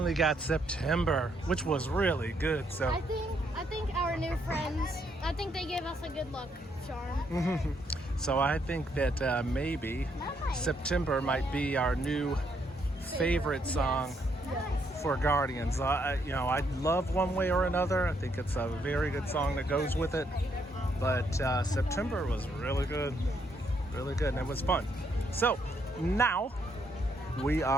got September, which was really good. So I think our new friends, I think they gave us a good luck charm. so I think that maybe September might be our new favorite song for Guardians. I love One Way or Another. I think it's a very good song that goes with it. But September was really good, and it was fun. So now we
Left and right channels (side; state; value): both; normal; correlation 0.74